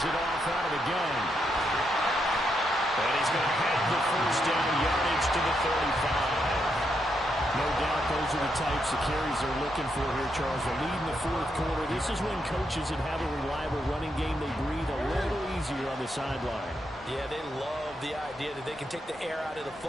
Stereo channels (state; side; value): normal; both; correlation 0.80